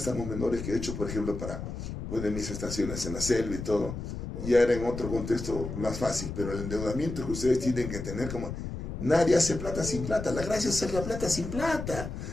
menores que he hecho, por ejemplo, para poner mis estaciones en la selva y todo, ya era en otro contexto más fácil, pero el endeudamiento que ustedes tienen que tener como... Nadie hace plata sin plata, la gracia es hacer la plata sin plata,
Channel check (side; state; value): left; noise; rumble, 7 dB below the sound